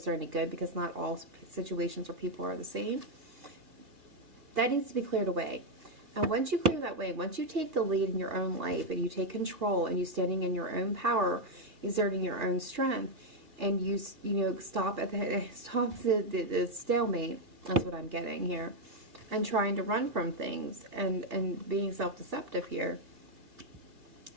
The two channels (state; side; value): late; left; 3.1 ms